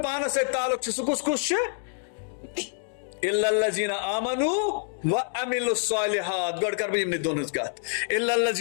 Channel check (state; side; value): silent; right; digital silence